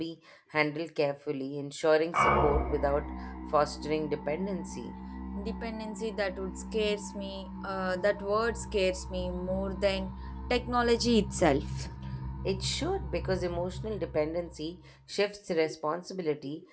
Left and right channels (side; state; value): both; identical; correlation 1.00